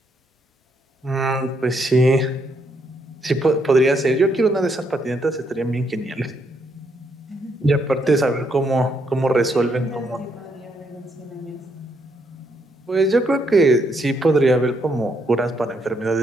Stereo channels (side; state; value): both; normal; correlation 0.75